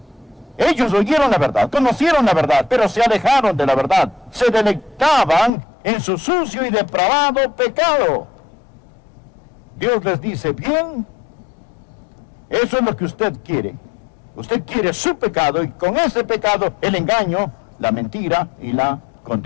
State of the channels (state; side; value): drops out; right; at 5.5 s